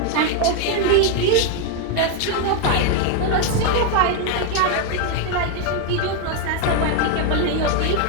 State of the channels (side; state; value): both; different; correlation 0.01